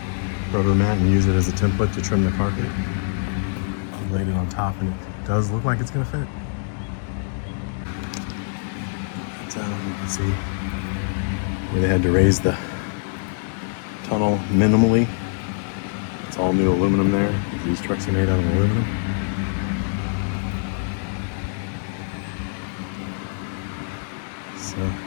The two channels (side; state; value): right; silent; digital silence